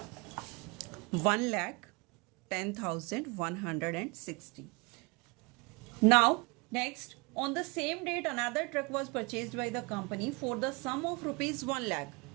1,10,160. Now next, on the same date another truck was purchased by the company for the sum of rupees 1 lakh.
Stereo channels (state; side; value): quieter; left; 28.0 dB